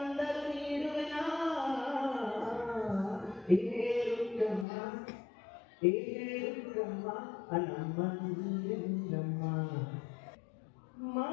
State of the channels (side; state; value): right; drops out; at 4.7 s